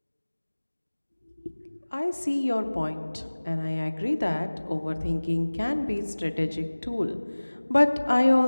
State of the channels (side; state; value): both; inverted; correlation -1.00